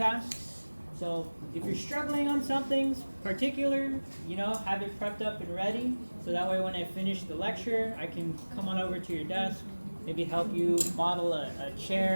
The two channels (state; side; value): inverted; both; correlation -1.00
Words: So if you're struggling on something particular, you know, have it prepped up and ready. So that way when I finish the lecture, I can come on over to your desk, maybe help you model a